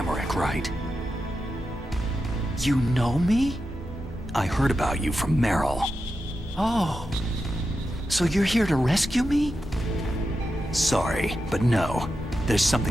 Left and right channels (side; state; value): both; normal; correlation 0.89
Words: right? You know me? I heard about you from Meryl. Oh. So you're here to rescue me? Sorry, but no. There's